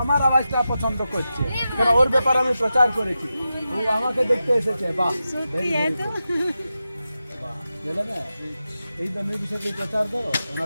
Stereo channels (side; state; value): both; inverted; correlation -0.91